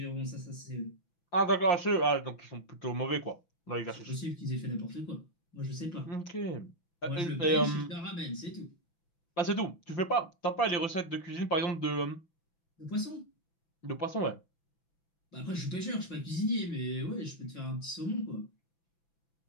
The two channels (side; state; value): right; late; 6.0 ms